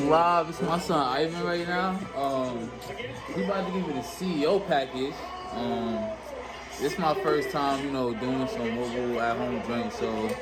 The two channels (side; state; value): both; identical; correlation 1.00